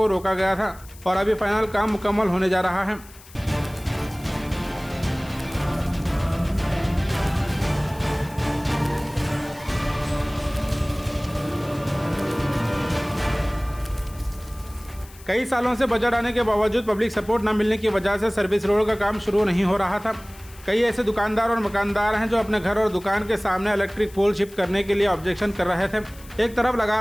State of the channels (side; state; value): left; noise; hiss, 22 dB below the sound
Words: रोका गया था और अभी फाइनल काम मुकम्मल होने जा रहा है। कई सालों से बजट आने के बावजूद पब्लिक सपोर्ट न मिलने की वजह से सर्विस रोड का काम शुरू नहीं हो रहा था। कई ऐसे दुकानदार और मकानदार हैं जो अपने घर और दुकान के सामने इलेक्ट्रिक पोल शिफ्ट करने के लिए ऑब्जेक्शन कर रहे थे। एक तरफ